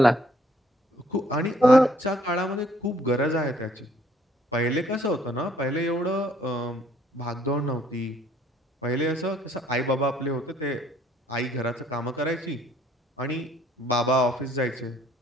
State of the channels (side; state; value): both; normal; correlation 0.62